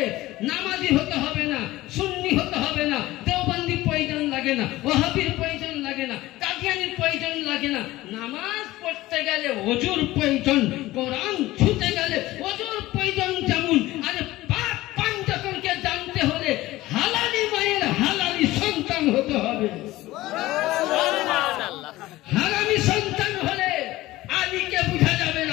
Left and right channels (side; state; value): right; quieter; 17.5 dB